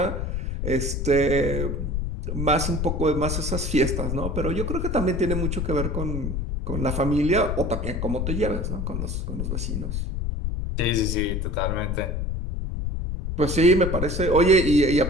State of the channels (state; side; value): noise; left; rumble, 2 dB below the sound